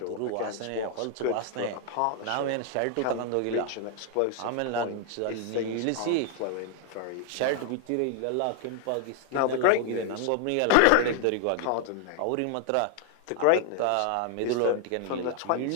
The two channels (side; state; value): both; different; correlation 0.00